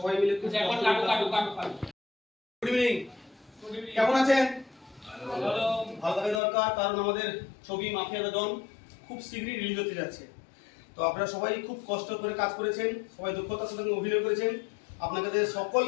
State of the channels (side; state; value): right; drops out; at 6.4 s